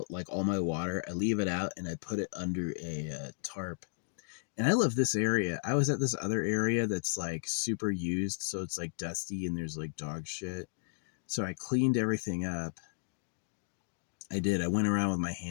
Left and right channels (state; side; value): silent; right; digital silence